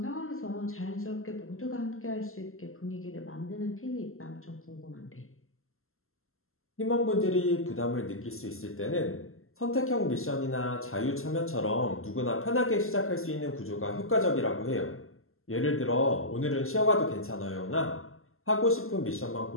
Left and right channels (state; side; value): late; right; 0.62 ms